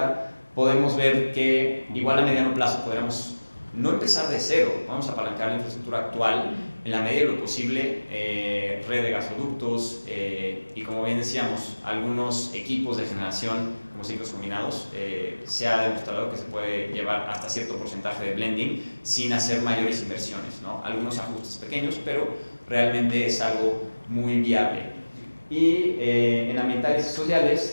podemos ver que igual a mediano plazo podremos no empezar de cero, vamos a apalancar la infraestructura actual en la medida de lo posible, red de gasoductos y como bien decíamos, algunos equipos de generación como ciclos combinados, se ha demostrado que se puede llevar hasta cierto porcentaje de blending sin hacer mayores inversiones, ¿no? Algunos ajustes pequeños, pero realmente es algo muy viable. Y en ambientales y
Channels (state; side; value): inverted; both; correlation -1.00